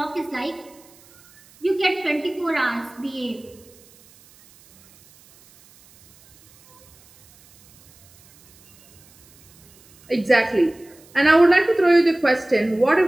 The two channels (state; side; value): noise; right; hiss, 28 dB below the sound